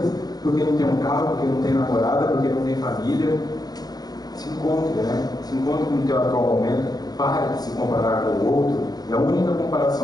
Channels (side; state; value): right; late; 0.19 ms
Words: Porque não tem um carro, porque não tem namorada, porque não tem família. Se encontre, né? Se encontre com o teu atual momento. Pare de se comparar com o outro. E a única